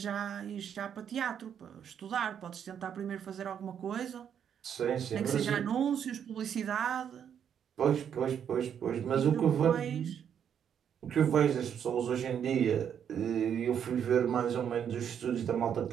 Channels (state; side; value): quieter; left; 8.5 dB